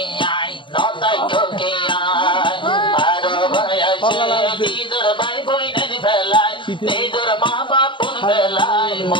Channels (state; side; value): late; right; 0.24 ms